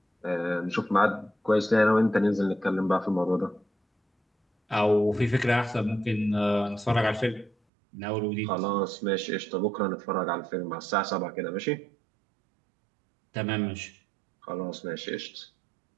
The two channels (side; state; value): left; drops out; at 7.5 s